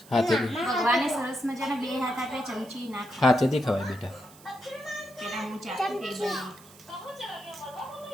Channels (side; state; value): right; noise; hiss, 23 dB below the sound